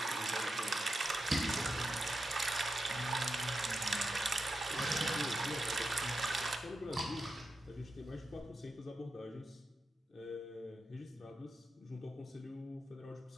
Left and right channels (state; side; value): normal; both; correlation 0.88